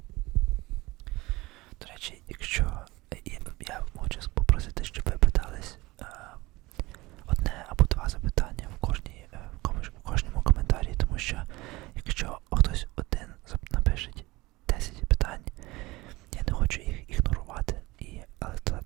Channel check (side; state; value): left; quieter; 21.0 dB